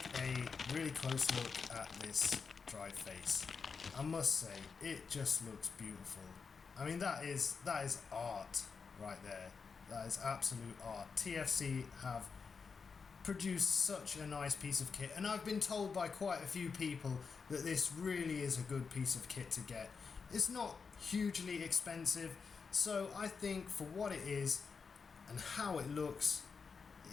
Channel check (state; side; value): quieter; right; 5.4 dB